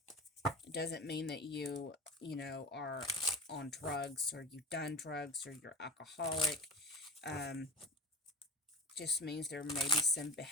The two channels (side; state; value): both; normal; correlation 0.33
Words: It doesn't mean that you know, are on drugs or you've done drugs or you're alcoholic. Just means there may be some